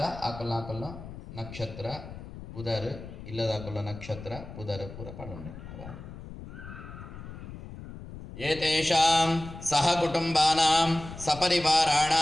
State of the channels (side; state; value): left; noise; rumble, 13 dB below the sound